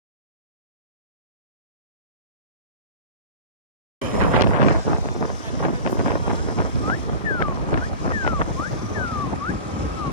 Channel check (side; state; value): both; inverted; correlation -0.35